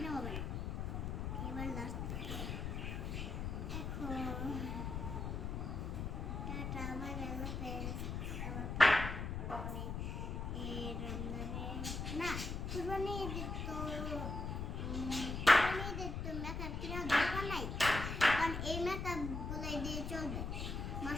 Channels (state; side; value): noise; left; rumble, 3 dB below the sound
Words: হবে না। এবার লাস্ট এখন টাটা বাই বাই ফ্রেন্ডস। এই রমজানে না কুরবানি ঈদের তো কুরবানি ঈদের তো মেকআপ কেনার দরকার নাই, কারণ এই মেকআপ গুলাই দিয়ে চলবে।